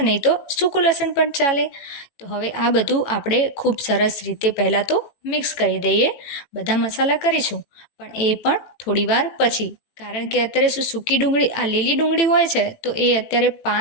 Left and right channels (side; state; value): right; late; 18 ms